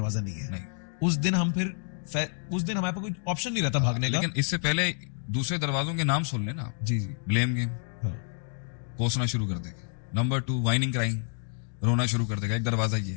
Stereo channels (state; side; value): silent; right; 59 dB below the other